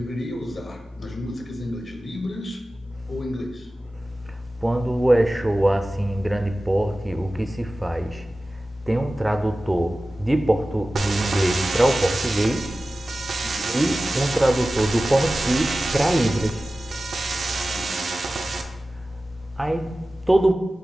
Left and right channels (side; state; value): both; normal; correlation 0.95